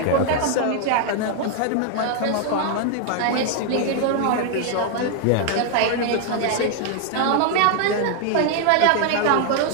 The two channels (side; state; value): both; different; correlation 0.00